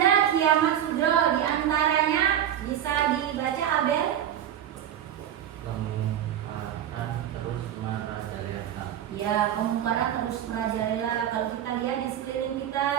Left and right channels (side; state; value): left; quieter; 10.3 dB